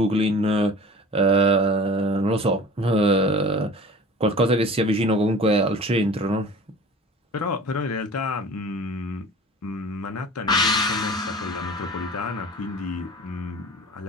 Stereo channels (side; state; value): both; normal; correlation 0.41